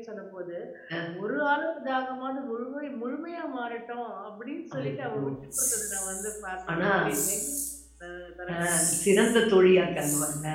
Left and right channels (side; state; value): both; identical; correlation 1.00